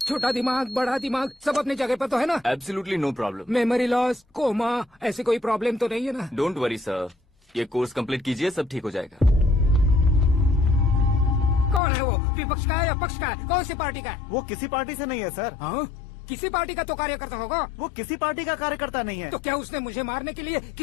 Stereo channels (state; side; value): drops out; right; at 11.8 s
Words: छोटा दिमाग बड़ा दिमाग सब अपनी जगह पर तो है ना? Absolutely no problem. Memory loss, coma, ऐसी कोई प्रॉब्लम तो नहीं है ना? डोंट वरी सर, ये कोर्स कंप्लीट कीजिए, सब ठीक हो जाएगा। कौन है वो? विपक्ष का है या पक्ष का है? कौन सी पार्टी का है? वो किसी पार्टी से नहीं है सर। हाँ? किसी पार्टी का तो कार्यकर्ता होगा। वो किसी पार्टी का कार्यकर्ता नहीं है। तो क्या उसने मुझे मारने के लिए